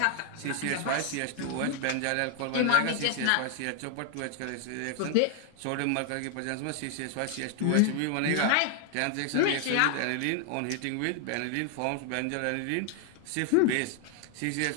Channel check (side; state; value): both; different; correlation 0.00